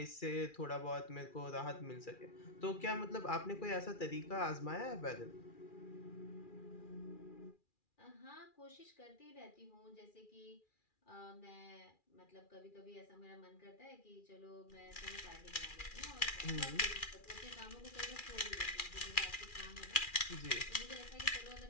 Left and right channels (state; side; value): late; right; 2.4 ms